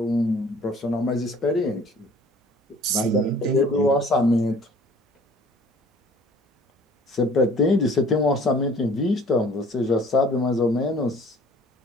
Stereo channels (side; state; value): both; normal; correlation 0.52